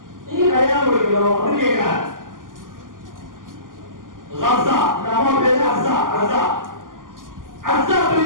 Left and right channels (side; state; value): left; late; 0.89 ms